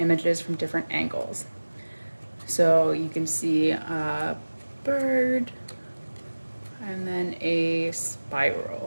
from different angles. So you can see a bird and then a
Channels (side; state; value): both; inverted; correlation -1.00